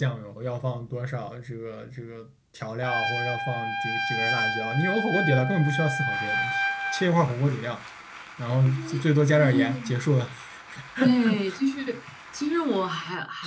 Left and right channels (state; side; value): identical; both; correlation 1.00